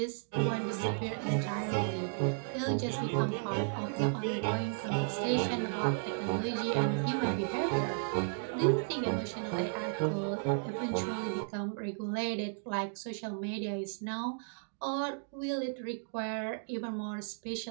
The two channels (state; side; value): silent; left; digital silence